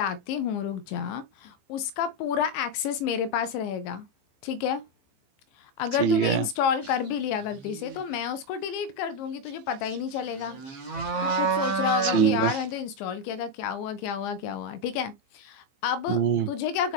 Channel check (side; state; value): right; late; 15 ms